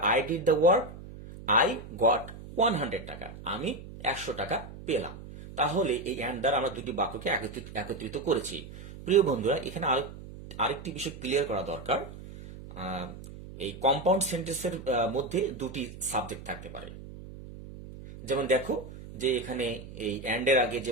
I did the work, I got 100 টাকা, আমি 100 টাকা পেলাম। তাহলে এই অ্যান্ড দ্বারা আমরা দুটি বাক্যকে একত্রিত করেছি। প্রিয় বন্ধুরা, এখানে আরেকটি বিষয় ক্লিয়ার করা দরকার। এই কম্পাউন্ড সেন্টেন্সের মধ্যে দুটি সাবজেক্ট থাকতে পারে। যেমন দেখো যে এখানে এই অ্যান্ড এর আগে যে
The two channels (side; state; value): right; noise; hum, 14 dB below the sound